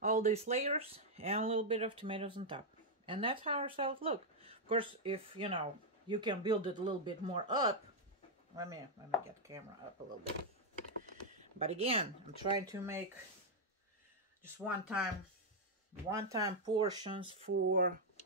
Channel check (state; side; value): normal; both; correlation -0.02